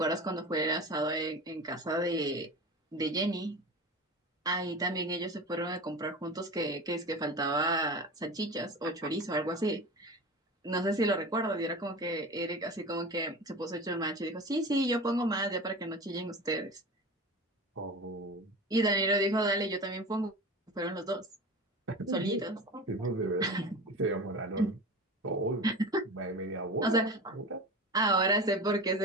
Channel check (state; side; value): normal; both; correlation 0.32